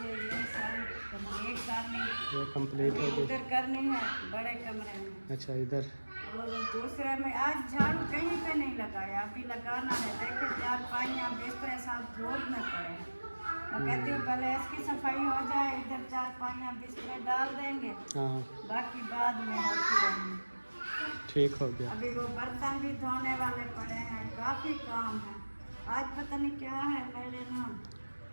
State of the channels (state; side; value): inverted; both; correlation -1.00